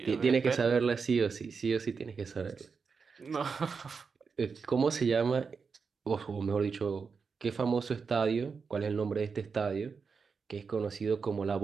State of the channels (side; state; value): left; quieter; 5.3 dB